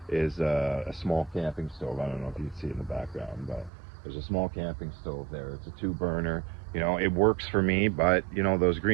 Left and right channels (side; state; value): left; drops out; at 3.7 s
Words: a small camping stove. I don't know if you can see in the background, but there's a small camping stove there. It's a 2 burner. It works for me, but those